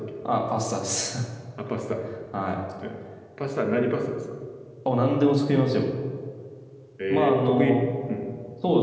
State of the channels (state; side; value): identical; both; correlation 1.00